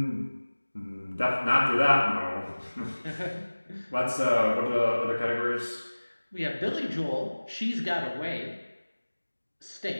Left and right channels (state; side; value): inverted; both; correlation -1.00